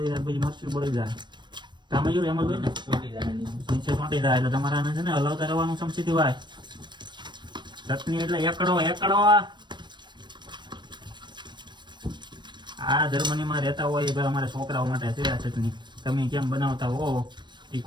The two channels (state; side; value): late; left; 0.22 ms